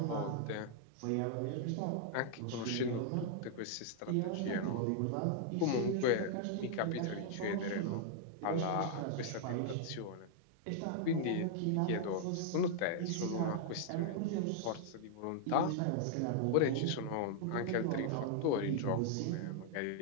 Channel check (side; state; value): both; different; correlation -0.01